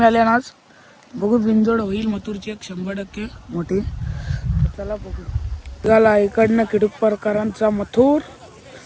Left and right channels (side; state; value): both; identical; correlation 1.00